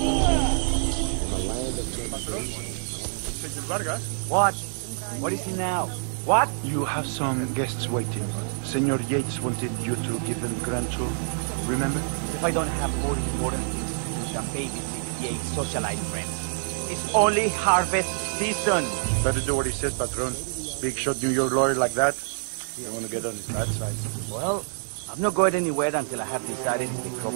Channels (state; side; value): silent; left; digital silence